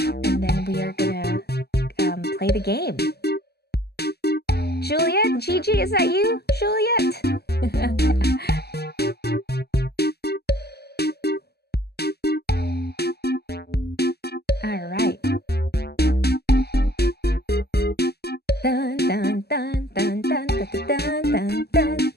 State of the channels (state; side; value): late; right; 0.46 ms